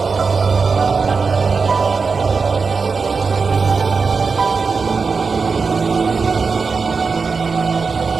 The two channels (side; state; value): left; quieter; 4.9 dB